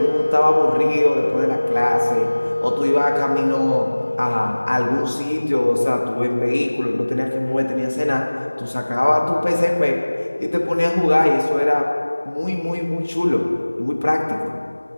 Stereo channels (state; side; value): inverted; both; correlation -1.00